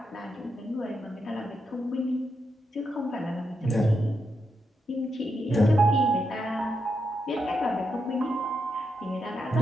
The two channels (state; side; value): normal; both; correlation 0.84